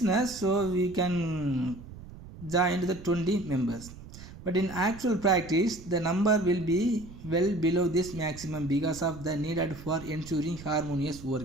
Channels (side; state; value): right; noise; rumble, 16 dB below the sound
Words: so we can join the 20 members. But in actual practice, the number will be well below this maximum because of the needed for ensuring harmonious